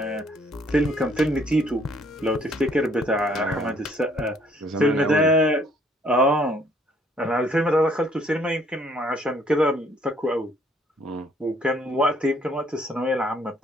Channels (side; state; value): both; normal; correlation 0.64